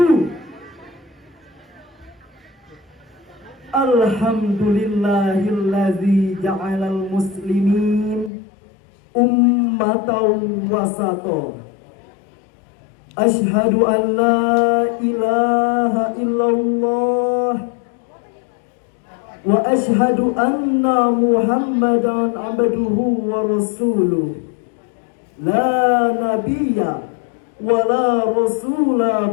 Alhamdulillahillazi ja'alal muslimin ummatan wasata. Ashhadu an la ilaha illallah wa ashhadu anna Muhammadan abduhu wa rasuluh. La nabiyya wa la rasula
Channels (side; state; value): right; drops out; at 8.3 s